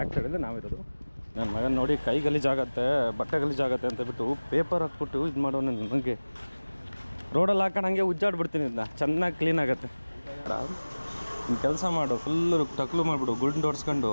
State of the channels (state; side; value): inverted; both; correlation -1.00